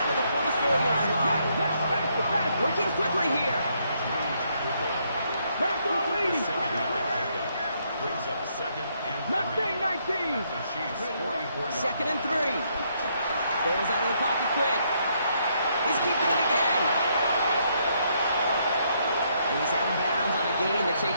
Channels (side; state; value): both; inverted; correlation -0.73